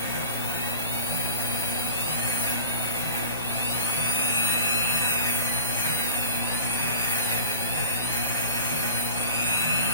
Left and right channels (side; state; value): both; inverted; correlation -0.37